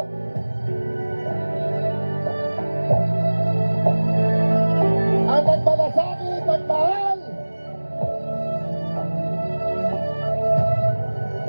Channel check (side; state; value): both; inverted; correlation -1.00